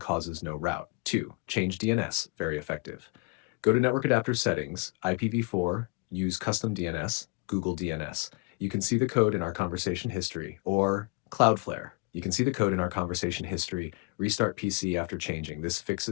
no route. 2. Change DNS, very effective. Go to Network Adapter Settings, IPv4, use Custom DNS, Google DNS. You can see the code in our conversation history, or Cloudflare. You can see the code in our conversation history, restart PC after changing. This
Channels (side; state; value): right; quieter; 29.2 dB